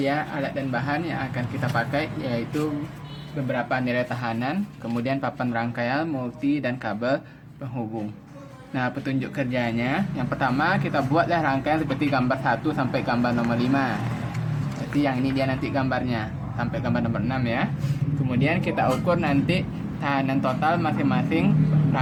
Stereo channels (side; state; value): both; identical; correlation 1.00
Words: alat dan bahan yang akan kita pakai, yaitu beberapa nilai tahanan, kemudian papan rangkaian, multi, dan kabel penghubung. Nah, petunjuk kerjanya, yang pertama kita buatlah rangkaian seperti gambar 1 sampai gambar nomor 5. Jadi yang ini dia nanti gambarnya, sampai gambar nomor 6 ya. Kemudian kita ukur nanti tahanan total masing-masing